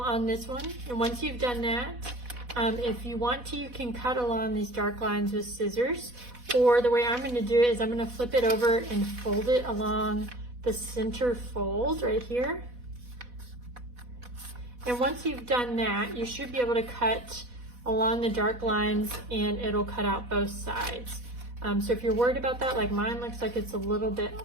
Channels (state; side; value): late; left; 4.1 ms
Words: on this one. And once you've done that, if you want to, you can cut along these dark lines with scissors, or the way I'm going to do it is I'm going to flip it over and fold it along the center fold right here. And once you've done that, you should be able to cut along the dark lines and it'll cut out both sides. So if you're worried about that, like mine looks like it's a little bit